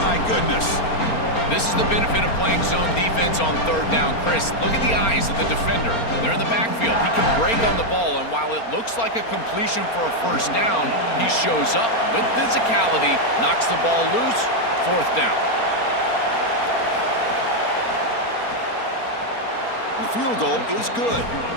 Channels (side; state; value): right; late; 4.3 ms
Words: My goodness. This is the benefit of playing zone defense on 3rd down. Chris, look at the eyes of the defender. They're in the backfield. He can break on the ball, and while it looks like a completion for a first down, he shows up with physicality, knocks the ball loose, 4th down. The field goal is good.